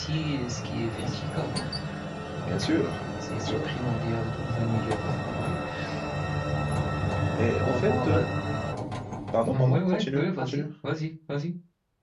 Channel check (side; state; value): both; identical; correlation 1.00